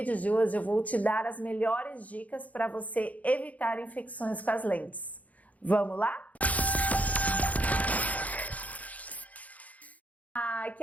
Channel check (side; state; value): right; late; 0.072 ms